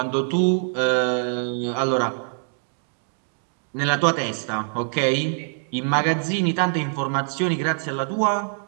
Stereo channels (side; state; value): left; silent; digital silence